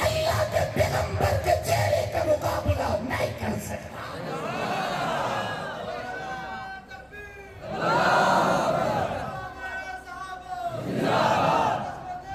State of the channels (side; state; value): both; identical; correlation 1.00